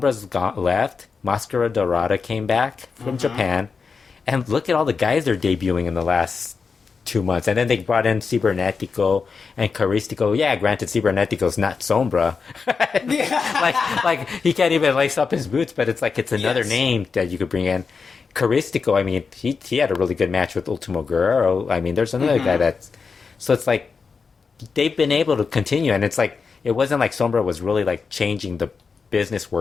left, Mascara Dorada came back from Japan, and look at all the guys they're debuting in the last 2 months, and then they brought in Cibernetico and Caristico. Yeah, granted, Cibernetico's not Sombra. like he can't even lace up his boots, but it's like it's another name that you could bring in. Caristico, I mean, he had a really good match with Ultimo Guerrero. I mean, there's another guy that's so it's like they've been able to continue, and it's like it wasn't like Sombra was really like changing the business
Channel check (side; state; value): right; quieter; 5.2 dB